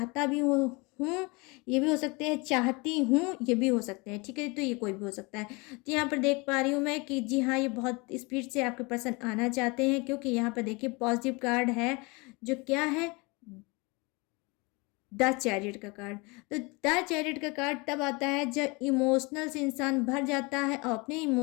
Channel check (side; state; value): right; quieter; 27.2 dB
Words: भी हूँ, ये भी हो सकते हैं, चाहती हूँ ये भी हो सकते हैं, ठीक है। तो ये कोई भी हो सकता है। तो यहाँ पर देख पा रही हूँ मैं कि जी हाँ, ये बहुत स्पीड से आपके पर्सन आना चाहते हैं, क्योंकि यहाँ पर देखिए पॉजिटिव कार्ड है जो क्या है, द चैरियट का कार्ड। तो द चैरियट का कार्ड तब आता है जब इमोशनल से इंसान भर जाता है और अपने